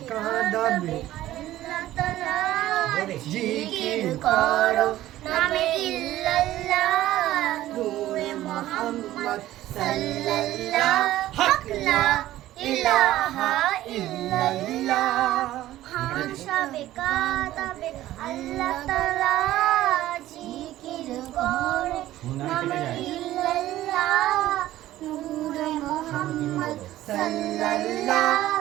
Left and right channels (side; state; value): left; quieter; 14.6 dB